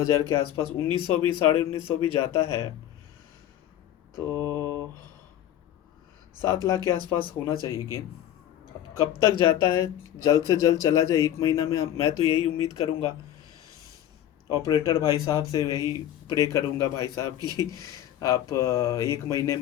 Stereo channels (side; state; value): right; quieter; 11.7 dB